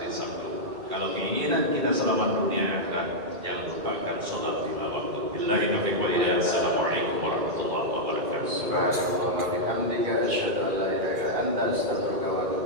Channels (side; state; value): left; late; 2.4 ms